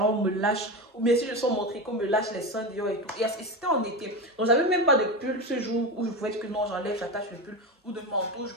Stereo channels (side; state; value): both; normal; correlation 0.19